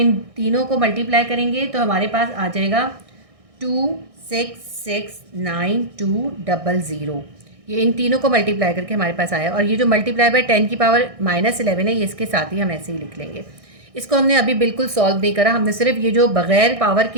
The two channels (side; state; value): left; late; 1.6 ms